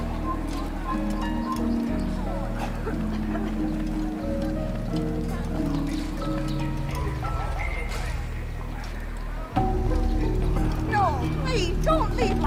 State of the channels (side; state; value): both; identical; correlation 1.00